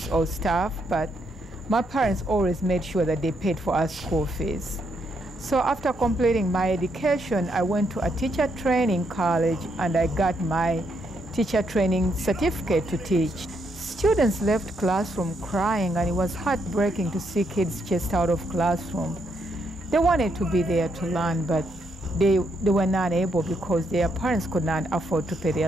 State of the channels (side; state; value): both; normal; correlation 0.77